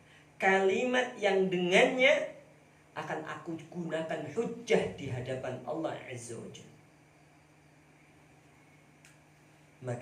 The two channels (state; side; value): identical; both; correlation 1.00